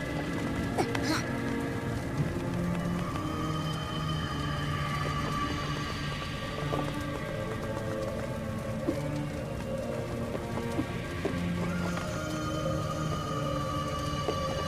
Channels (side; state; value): both; identical; correlation 1.00